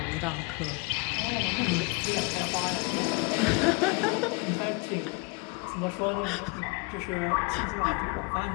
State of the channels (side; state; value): right; quieter; 29.7 dB